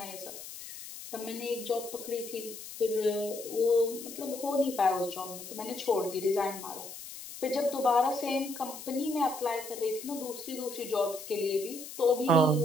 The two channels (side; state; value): left; noise; hiss, 12 dB below the sound